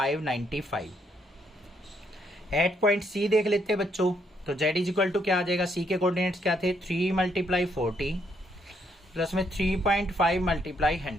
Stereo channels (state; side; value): normal; both; correlation 0.73